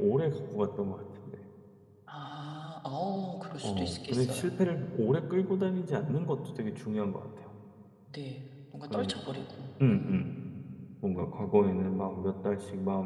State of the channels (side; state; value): both; identical; correlation 1.00